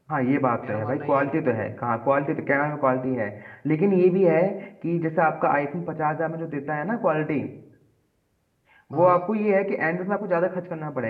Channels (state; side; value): identical; both; correlation 1.00